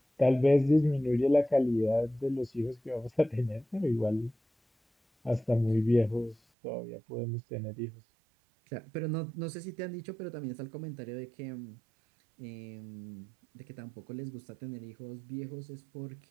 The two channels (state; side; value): drops out; left; at 6.4 s